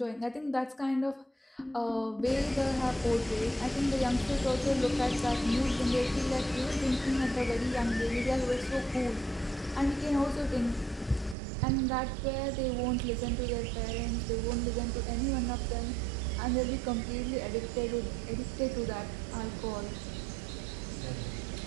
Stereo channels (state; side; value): drops out; left; at 11.4 s